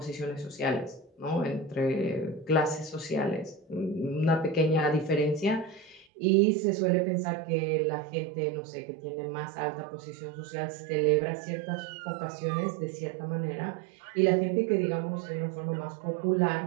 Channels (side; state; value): left; drops out; at 6.1 s